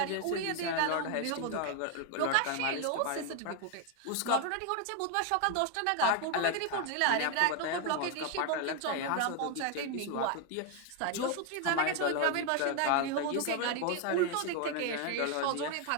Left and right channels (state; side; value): different; both; correlation 0.01